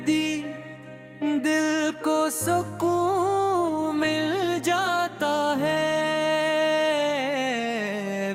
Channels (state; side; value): identical; both; correlation 1.00